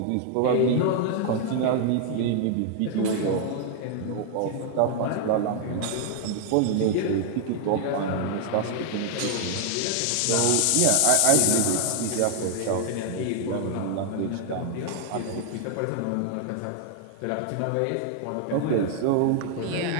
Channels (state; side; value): different; both; correlation 0.00